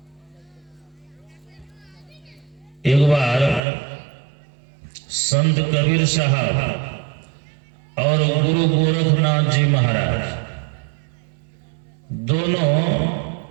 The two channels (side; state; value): left; drops out; at 3.6 s